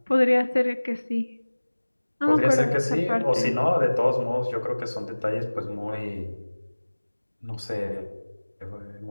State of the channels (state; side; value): inverted; both; correlation -1.00